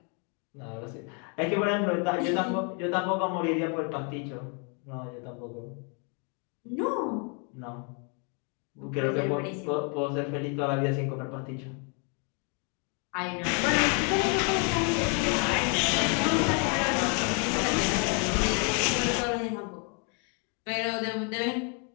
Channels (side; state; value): right; quieter; 37.9 dB